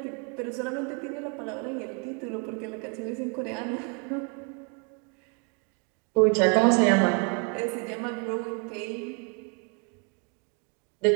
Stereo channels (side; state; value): left; quieter; 36.2 dB